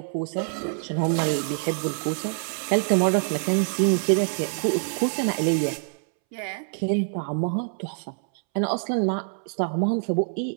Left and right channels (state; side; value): silent; left; 61 dB below the other